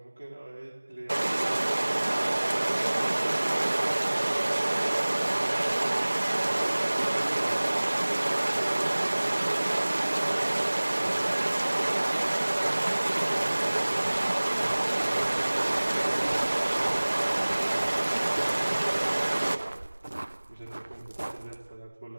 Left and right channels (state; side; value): inverted; both; correlation -1.00